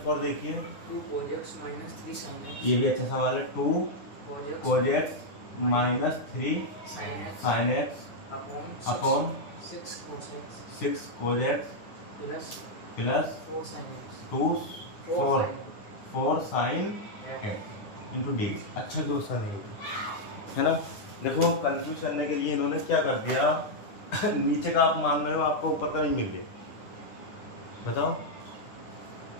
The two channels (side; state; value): right; late; 9.7 ms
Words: देखिए। 2 cos x minus 3 sin x। ये भी अच्छा सवाल है। 2 cos x minus 3 sin x upon 6 cos x 6 cos x plus plus 4 sin x 2 4 4 sin x into D. अच्छा question है ना। देखो कंफ्यूज करने के लिए इन्होंने क्या कर दिया नीचे का आप मान रहे हो, आपको ऊपर का नहीं मिल गया। बताओ,